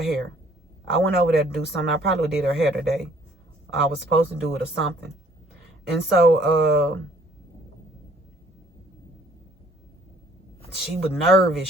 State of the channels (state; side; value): normal; both; correlation 0.59